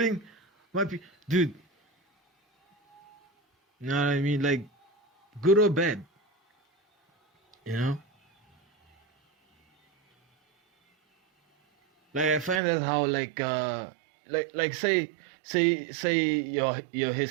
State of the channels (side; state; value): left; drops out; at 12.6 s